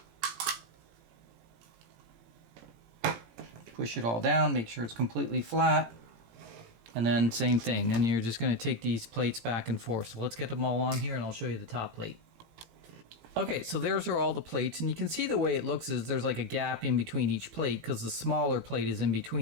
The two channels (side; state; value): left; late; 17 ms